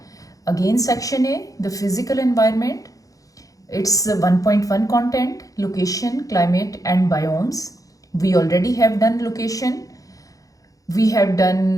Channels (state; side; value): late; right; 0.17 ms